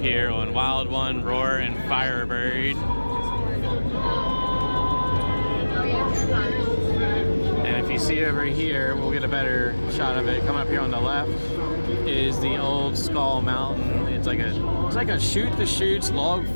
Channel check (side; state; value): both; inverted; correlation -1.00